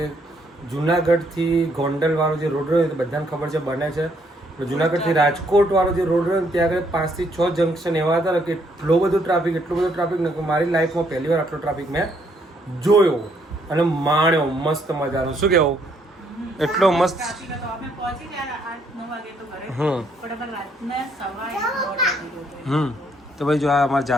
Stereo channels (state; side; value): normal; both; correlation 0.70